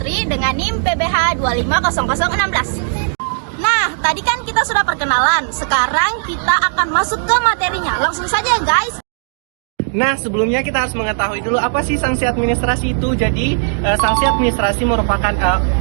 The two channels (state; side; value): silent; left; digital silence